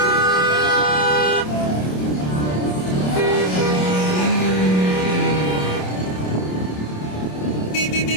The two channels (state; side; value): late; right; 27 ms